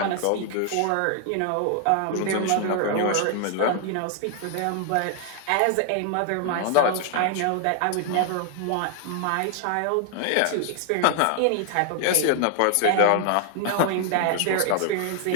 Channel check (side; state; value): both; different; correlation 0.00